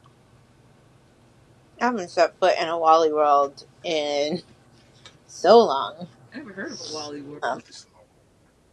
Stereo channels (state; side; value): identical; both; correlation 1.00